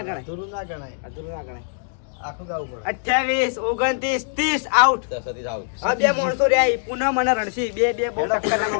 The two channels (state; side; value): silent; right; digital silence